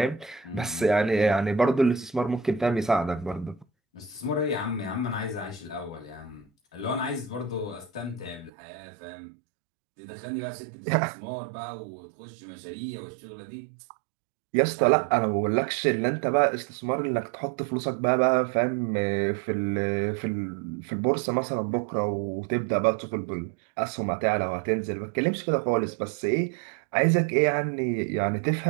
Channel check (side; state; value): left; drops out; at 8.5 s